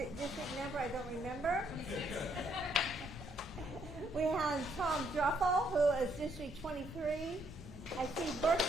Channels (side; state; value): both; normal; correlation 0.71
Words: district number I don't remember. We have Thom Druffel, who is District 23. I see